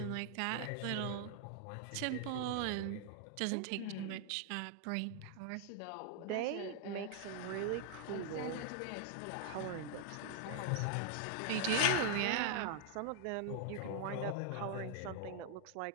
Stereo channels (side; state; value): both; different; correlation -0.01